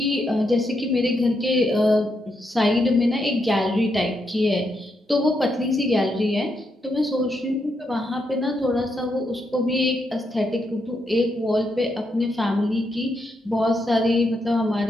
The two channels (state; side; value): normal; both; correlation 0.81